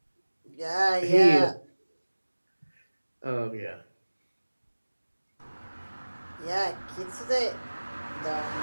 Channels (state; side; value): inverted; both; correlation -1.00